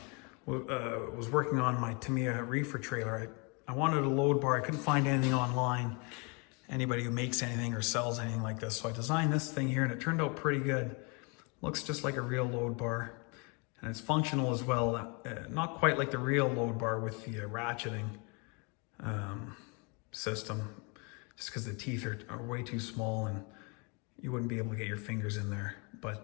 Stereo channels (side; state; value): right; quieter; 32.1 dB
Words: was working on my Tamiya reefer trailer. I wanted a load bar. I couldn't find anything online, anybody who makes anything or sells anything like this. So I designed this thing here and it turned out pretty good. Looks just like a real load bar, and it's functional as well. Not quite like the real load bar with the ratcheting system, just because the teeth are way too small and you wouldn't be able to get your fingers in there.